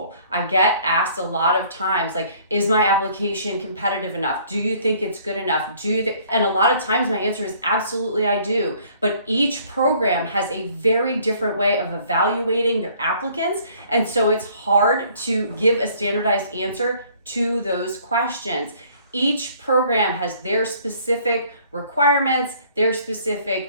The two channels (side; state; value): both; inverted; correlation -0.58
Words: I get asked a lot of times, like, is my application competitive enough? Do you think it's good enough? And a lot of times my answer is absolutely I do. But each program has a very different way of evaluating their applicants. And so it's hard to give a standardized answer to those questions. Each program has their specific requirements, their